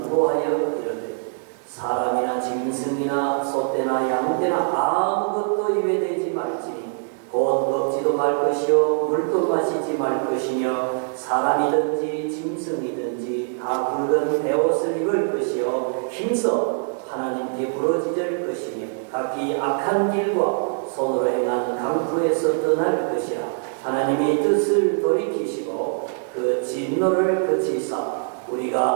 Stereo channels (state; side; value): silent; left; digital silence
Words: 이르되 사람이나 짐승이나 소떼나 양떼나 아무것도 입에 대지 말지니 곧 먹지도 말 것이요 물도 마시지 말 것이며 사람이든지 짐승이든지 다 굵은 베옷을 입을 것이요 힘써 하나님께 부러지질 것이며 각기 악한 길과 손으로 행한 강구에서 떠날 것이라. 하나님이 뜻을 돌이키시고 그 진노를 그치사